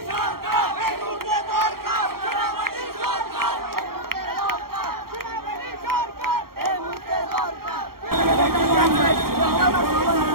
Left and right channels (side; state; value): left; late; 0.93 ms